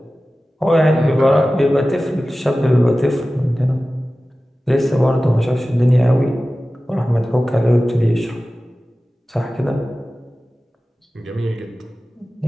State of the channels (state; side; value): normal; both; correlation 0.96